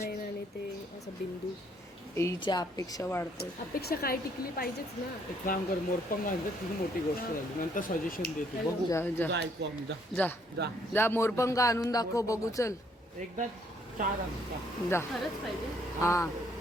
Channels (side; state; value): both; normal; correlation 0.67